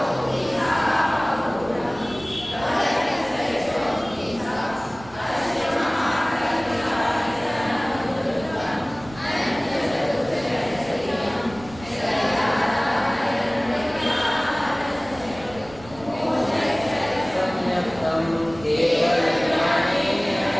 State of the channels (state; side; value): noise; right; rumble, 19 dB below the sound